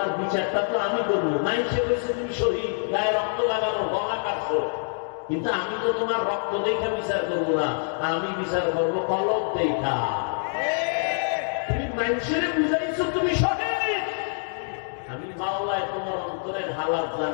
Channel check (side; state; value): right; silent; digital silence